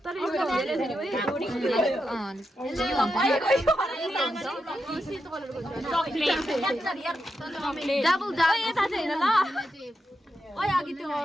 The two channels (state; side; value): normal; both; correlation 0.86